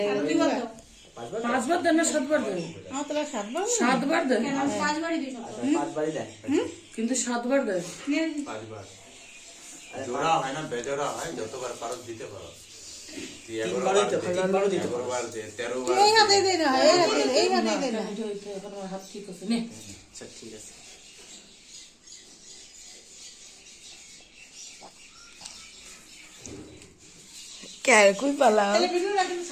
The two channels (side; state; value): both; identical; correlation 1.00